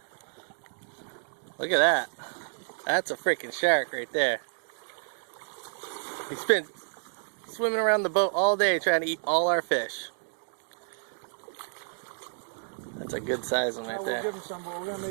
Look at that. That's a freaking shark right there. He's been swimming around the boat all day trying to eat all our fish. That's a good size one right there. We'll give him some, but we're going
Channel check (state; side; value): silent; left; digital silence